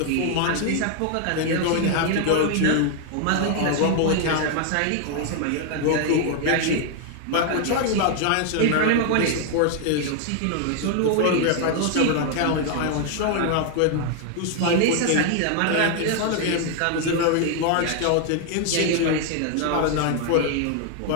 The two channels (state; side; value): different; both; correlation 0.00